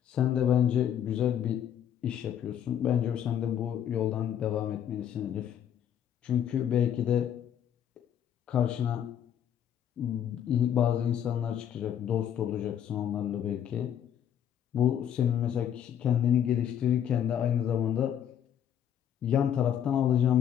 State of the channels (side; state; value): right; quieter; 9.7 dB